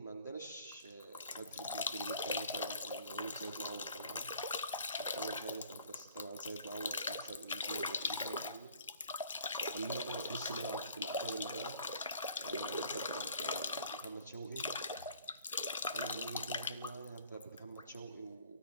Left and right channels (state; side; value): inverted; both; correlation -0.53